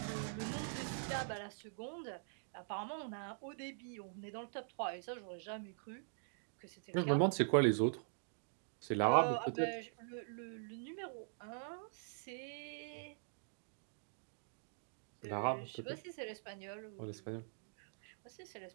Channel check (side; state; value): left; silent; digital silence